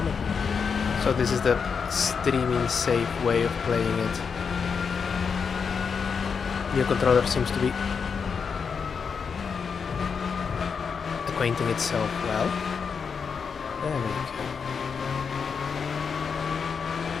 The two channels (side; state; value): right; quieter; 6.0 dB